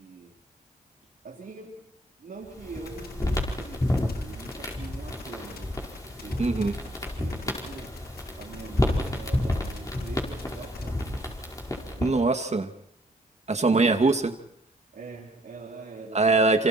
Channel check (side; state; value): both; normal; correlation 0.64